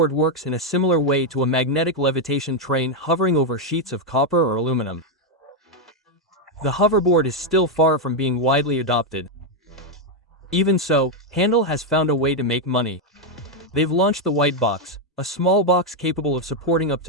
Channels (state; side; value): normal; both; correlation 0.03